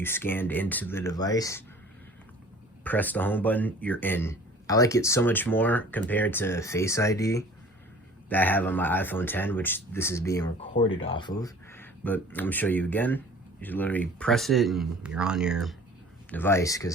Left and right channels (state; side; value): normal; both; correlation 0.47